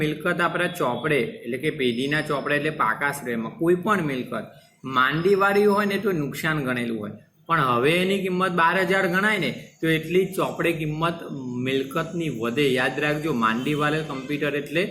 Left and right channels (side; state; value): both; identical; correlation 1.00